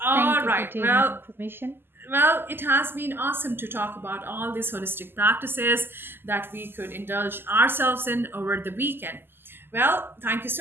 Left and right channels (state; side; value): late; left; 0.10 ms